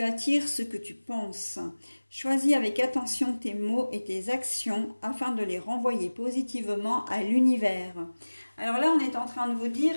attires ce que tu penses. Choisis avec attention tes mots et tes actions afin de les renvoyer positivement à l'univers. Alors là, on est en train de vous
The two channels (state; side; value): inverted; both; correlation -1.00